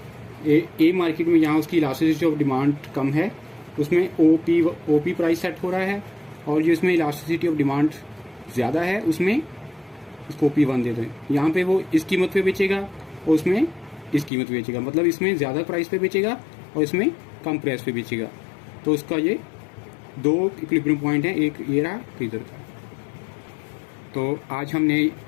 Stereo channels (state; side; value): drops out; right; at 14.3 s